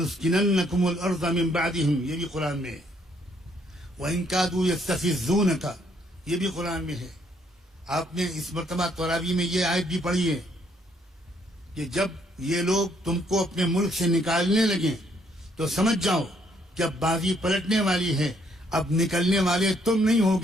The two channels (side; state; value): both; normal; correlation 0.69